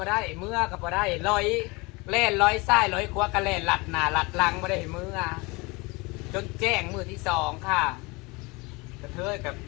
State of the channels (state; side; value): quieter; right; 25.7 dB